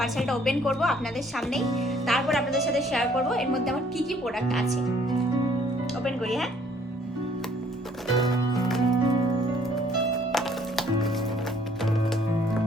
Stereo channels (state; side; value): normal; both; correlation 0.61